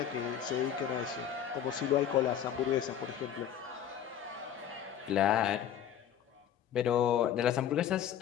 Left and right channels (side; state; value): right; quieter; 9.5 dB